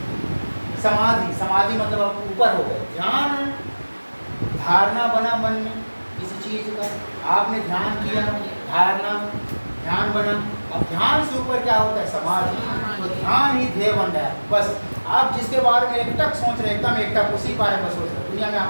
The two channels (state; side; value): inverted; both; correlation -1.00